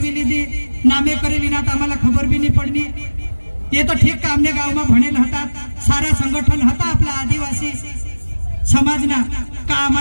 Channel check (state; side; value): inverted; both; correlation -1.00